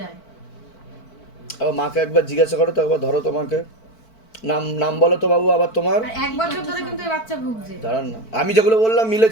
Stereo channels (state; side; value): late; right; 4.5 ms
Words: মাকে একবার জিজ্ঞাসা করো তো, একবার ধরো তোমাকে। নাম বলো তো বাবু আবার তোমার। আর 1 বছর ধরে কিন্তু এই বাচ্চা ভুগছে। দাঁড়ান না, আমি যেগুলো বললাম